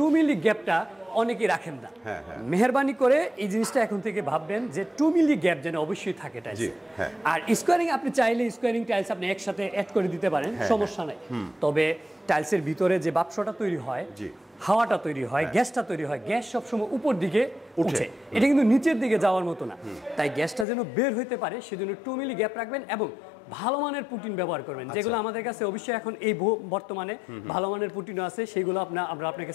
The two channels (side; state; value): right; drops out; at 20.7 s